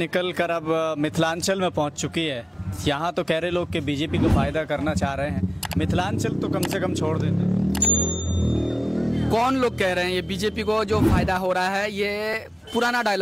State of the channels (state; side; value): normal; both; correlation 0.95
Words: कर अब मिथिलांचल में पहुंच चुकी है। यहाँ तो कह रहे लोग कि बीजेपी को फायदा करना चाह रहे हैं, मिथिलांचल तो कम से कम छोड़ देते। कौन लोग कह रहे हैं ये बीजेपी को जो फायदा हो रहा है? ये पुराना